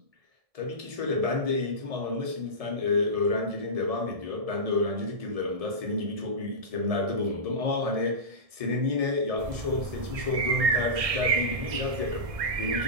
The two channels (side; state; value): left; late; 1.6 ms